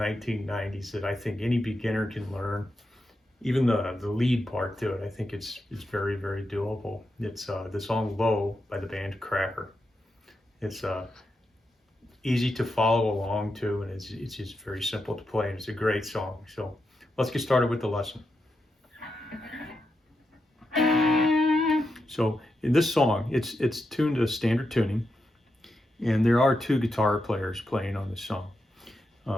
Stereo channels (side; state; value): both; normal; correlation 0.86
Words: that I think any beginner can learn. Even the lead part to it, I think it's very, very doable. It's the song Low by the band Cracker. It's easy to follow along to, and it's just very simple to play, and it's a great song. So let's get started with the lesson. So in this song, it's tuned to standard tuning, and there are two guitar players playing on this song.